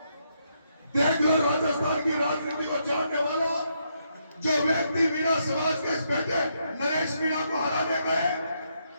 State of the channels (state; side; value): inverted; both; correlation -0.77